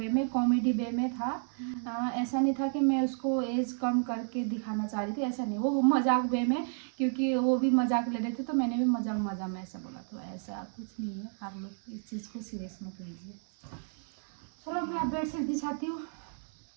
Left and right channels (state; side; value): silent; left; 57 dB below the other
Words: में कॉमेडी वे में था। ऐसा नहीं था कि मैं उसको एज कम करके दिखाना चाह रही थी, ऐसा नहीं, वो मजाक वे में, क्योंकि वो भी मजाक ले रहे थे तो मैंने भी मजाक में ऐसा बोला, तो ऐसा कुछ नहीं है, आप लोग इस चीज़ को सीरियस मत लीजिए। चलो मैं अब बेडशीट बिछाती हूँ,